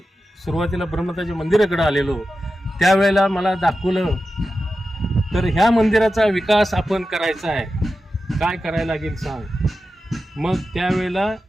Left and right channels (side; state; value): both; normal; correlation 0.92